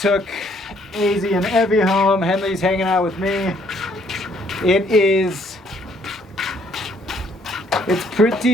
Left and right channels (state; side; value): normal; both; correlation 0.65